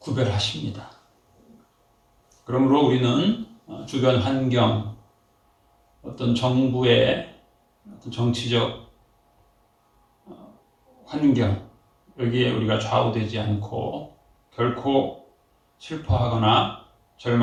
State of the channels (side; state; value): both; identical; correlation 1.00